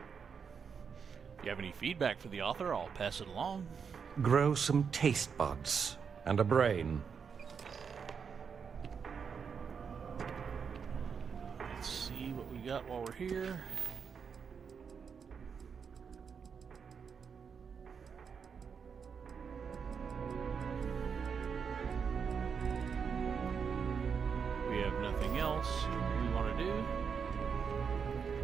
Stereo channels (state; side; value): quieter; left; 6.4 dB